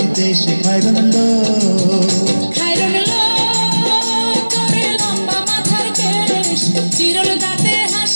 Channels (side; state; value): both; inverted; correlation -1.00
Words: দেশ খায়রন লো তোরে লম্বা মাথার কেশ চিরল দাঁতে